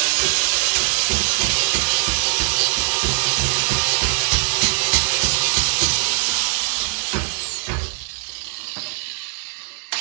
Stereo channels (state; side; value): silent; left; digital silence